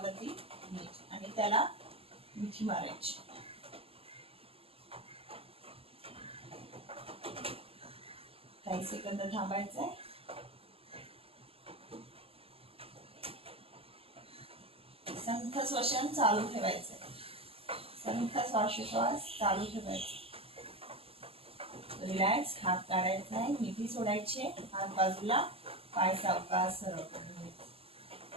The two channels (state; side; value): late; left; 0.28 ms